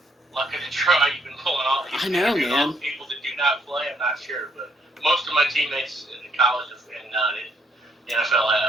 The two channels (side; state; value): both; normal; correlation 0.70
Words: lucky to try. You've been pulling all these man. People that do not play. I'm not sure, but most of my teammates in college and the NFL